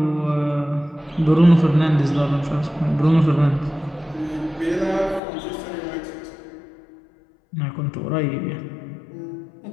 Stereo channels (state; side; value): drops out; right; at 5.2 s